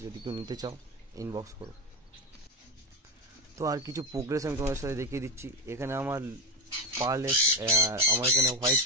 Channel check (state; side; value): normal; both; correlation 0.13